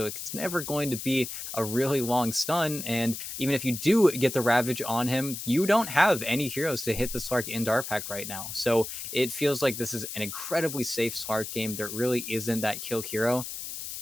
it's never going to be a really long stun. And even if you do get the Ravage on him, you don't have any heroes to hit the Slark in Dart Pact right now. So it feels like this is an incredibly safe Slark game. There really isn't that kill hero.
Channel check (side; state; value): left; noise; hiss, 7 dB below the sound